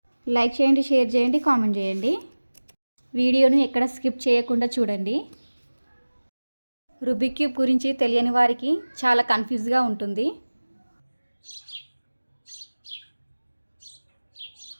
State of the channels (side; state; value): both; inverted; correlation -1.00